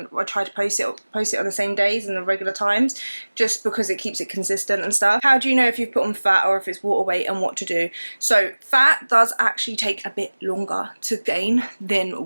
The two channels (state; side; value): inverted; both; correlation -1.00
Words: I try to post it on the same days and the regular times, just because it keeps it consistent and stuff. How do you know if you've put on fat or if it's water weight, and what to do? So fat does actually take a bit longer to gain